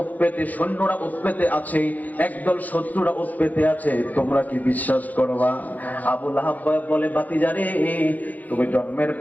উৎপেতে সৈন্যরা উৎপেতে আছে, একদল শত্রুরা উৎপেতে আছে, তোমরা কি বিশ্বাস করবা? আবু লাহাব বলে, ভাতিজারে তুমি জন্মের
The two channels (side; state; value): right; late; 0.080 ms